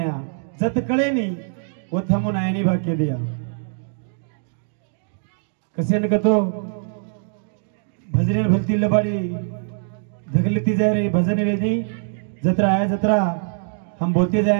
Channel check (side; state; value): left; silent; digital silence